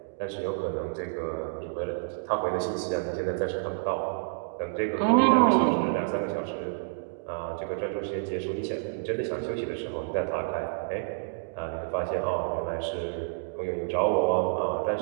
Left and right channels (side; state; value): left; silent; digital silence